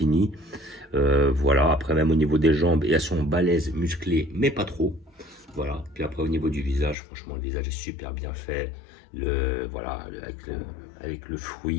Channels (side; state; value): right; drops out; at 7.0 s